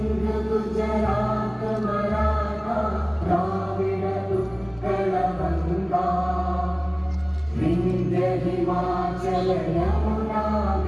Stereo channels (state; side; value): identical; both; correlation 1.00